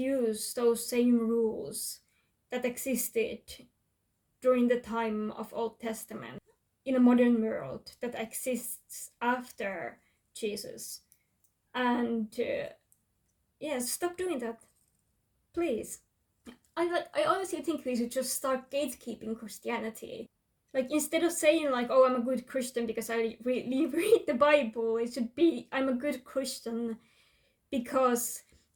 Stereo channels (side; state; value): both; identical; correlation 1.00